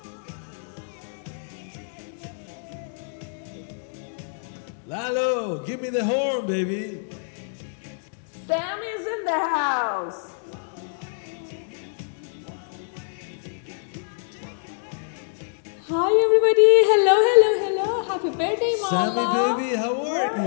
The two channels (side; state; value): right; silent; digital silence